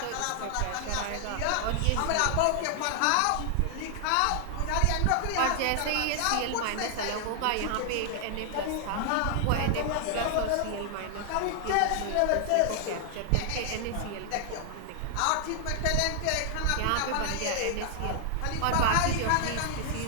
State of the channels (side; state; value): both; different; correlation 0.00